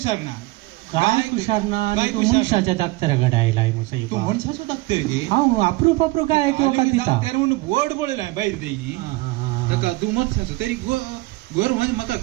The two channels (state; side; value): quieter; left; 21.7 dB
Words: ना काय कुशार ना आणि काय तू कुशार? मनशाच्या दाक्तराकडे आयलाय मुसाई तू मनशाचो डॉक्टर गे हांव अप्रूप काय किंवा दिता डॉक्टर म्हणून बोर्ड पळयलां भायर तेही ताका तू मनशाचो तरी घर म्हणजे म्हाका